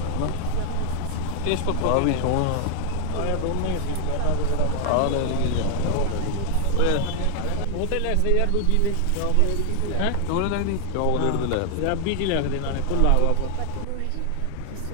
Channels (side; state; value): both; different; correlation 0.00